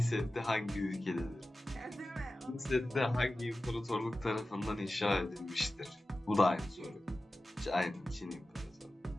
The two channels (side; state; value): both; normal; correlation 0.95